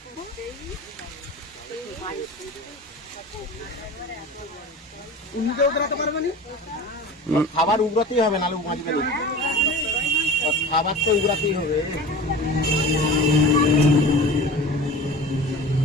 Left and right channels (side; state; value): both; normal; correlation 0.36